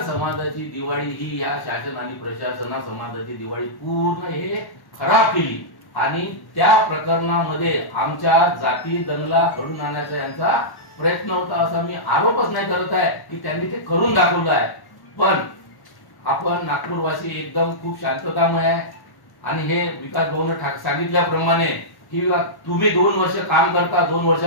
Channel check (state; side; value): late; right; 1.1 ms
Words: समाजाची दिवाळी ही या शासन आणि प्रशासना समाजाची दिवाळी पूर्ण हे खराब केली. आणि त्या प्रकरणामध्ये आमच्या जाती दंगला घडून आणण्याचा यांचा प्रयत्न होता, असा मी आरोपच नाही करत आहे की त्यांनी ते करून दाखवलं आहे. पण आपण नागपूरवासी एकदम खूप शांततामय आहे. आणि हे विकास भाऊने सांगितल्याप्रमाणे की तुम्ही 2 वर्ष काम करता, 2